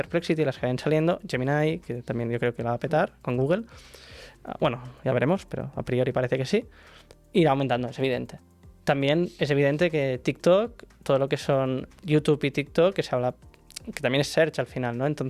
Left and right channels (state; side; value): identical; both; correlation 1.00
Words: las que vayan saliendo, Gemini, que también yo creo que la va a petar con Google. Bueno, ya veremos, pero a priori parece que sí. Irá aumentando, es evidente. También es evidente que TikTok, todo lo que son YouTube y TikTok, que se habla, que también es search al final, ¿no?